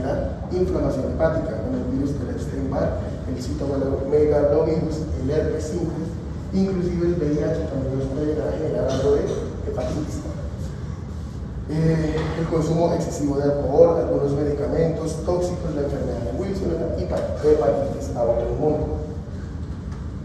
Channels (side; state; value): both; identical; correlation 1.00